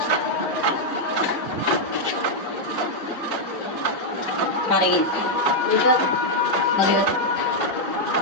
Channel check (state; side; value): normal; both; correlation -0.02